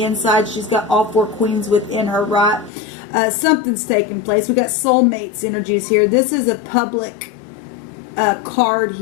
inside, she's got all four queens within her, right? Something's taking place. We got soulmates energies here. This is a public card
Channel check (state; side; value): drops out; right; at 2.7 s